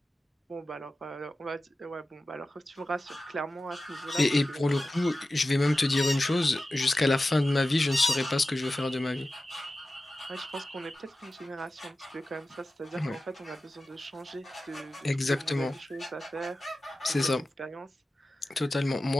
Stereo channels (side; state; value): both; normal; correlation 0.94